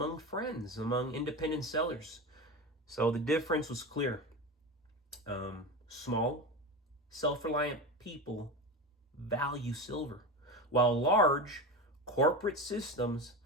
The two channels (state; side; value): normal; both; correlation 0.23